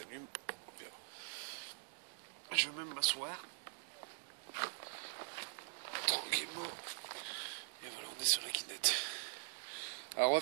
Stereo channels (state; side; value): silent; left; digital silence